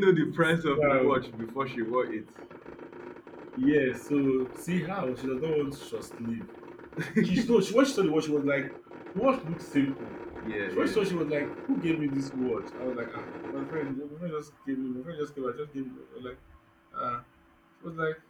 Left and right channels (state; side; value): identical; both; correlation 1.00